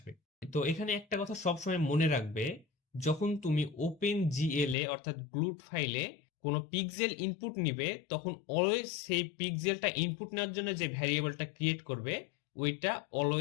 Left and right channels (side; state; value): right; drops out; at 4.8 s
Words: তো এখানে একটা কথা সবসময় মনে রাখবে, যখন তুমি ওপেন জিএল এ অর্থাৎ গ্লুট ফাইলে কোনো পিক্সেল ইনপুট নিবে তখন অলওয়েজ সেই পিক্সেলটা ইনপুট নেওয়ার জন্য যে ভ্যারিয়েবলটা ক্রিয়েট করবে ওইটা